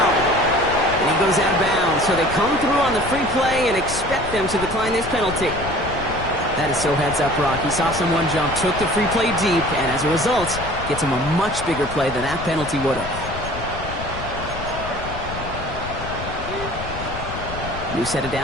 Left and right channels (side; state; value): left; noise; rumble, 10 dB below the sound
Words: And he goes out of bounds, so they come through on the free play and expect them to decline this penalty. That is so heads up, Rock. He saw someone jump, took the free play deep, and as a result, gets him a much bigger play than that penalty would have. New set of